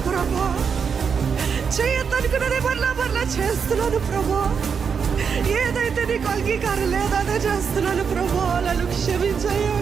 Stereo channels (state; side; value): quieter; left; 6.4 dB